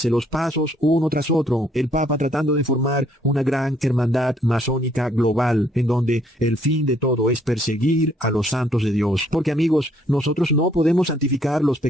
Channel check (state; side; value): normal; both; correlation 0.66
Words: los pasos uno tras otro. El Papa tratando de formar una gran hermandad masónica global, en donde el fin de todo es perseguir a los santos de Dios. Porque amigos, nosotros no podemos santificar los